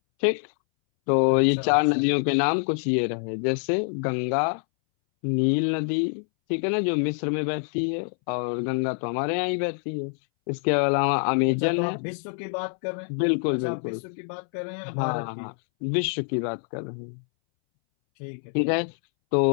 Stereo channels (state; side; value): silent; right; 61 dB below the other